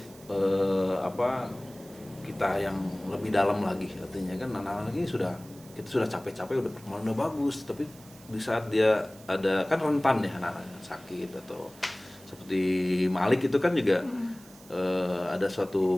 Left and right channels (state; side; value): noise; right; hiss, 22 dB below the sound